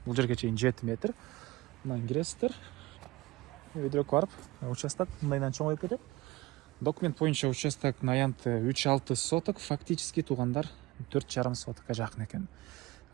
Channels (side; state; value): left; quieter; 20.3 dB